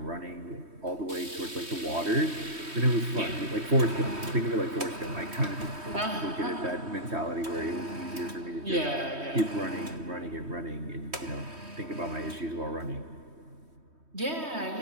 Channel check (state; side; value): late; left; 3.2 ms